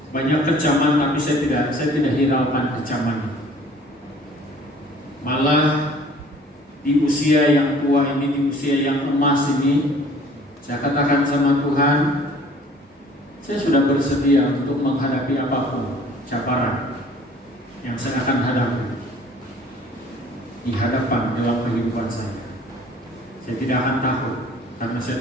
banyak kecaman, tapi saya tidak hiraukan kecaman. Malah di usia yang tua ini, di usia yang emas ini, saya katakan sama Tuhan, saya sudah bersedia untuk menghadapi apapun cabaran yang saya akan hadapi di hadapan dalam kehidupan saya. Saya tidak akan takut karena saya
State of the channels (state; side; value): normal; both; correlation 0.52